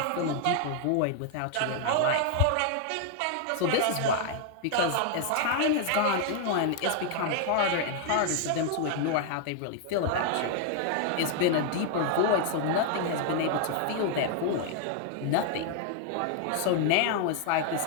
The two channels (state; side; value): different; both; correlation 0.00